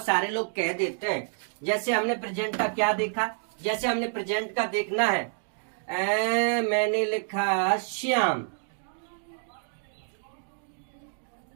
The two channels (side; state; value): left; silent; digital silence